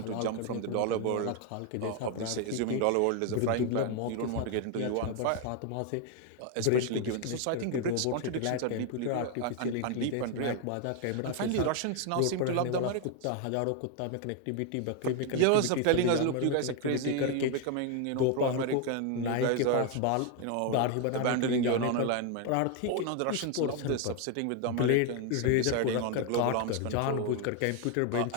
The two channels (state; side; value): different; both; correlation 0.01